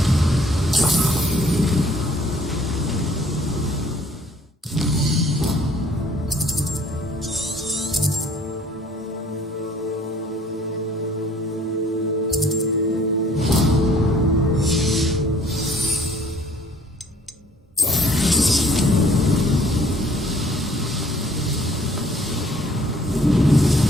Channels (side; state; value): both; normal; correlation 0.58